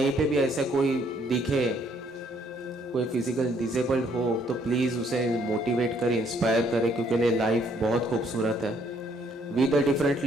पे भी ऐसे कोई दिखे, कोई फिजिकल डिसेबल्ड हो, तो प्लीज़ उसे मोटिवेट करें, इंस्पायर करें, क्योंकि लाइफ बहुत खूबसूरत है। We the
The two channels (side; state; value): both; normal; correlation 0.66